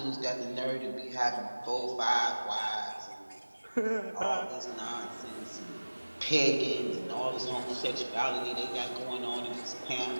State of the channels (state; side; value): inverted; both; correlation -1.00